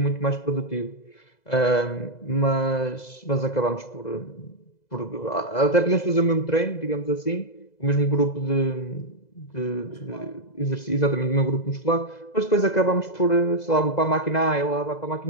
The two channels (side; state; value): right; late; 2.0 ms